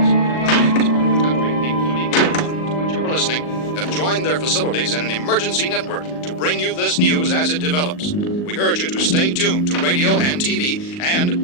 throughout this part of the country, including the one to which you are listening, have joined their facilities in an emergency network to bring you this news as it develops. We urge you to stay tuned to radio and TV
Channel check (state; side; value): late; right; 39 ms